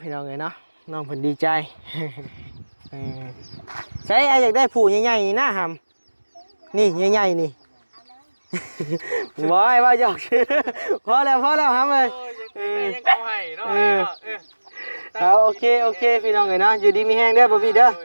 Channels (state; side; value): inverted; both; correlation -1.00